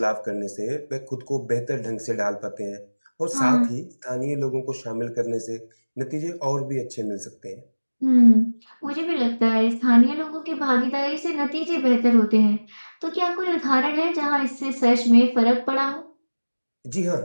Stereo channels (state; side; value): inverted; both; correlation -1.00